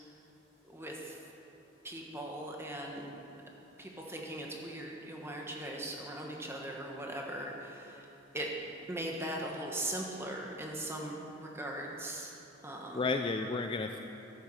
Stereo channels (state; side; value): normal; both; correlation 0.34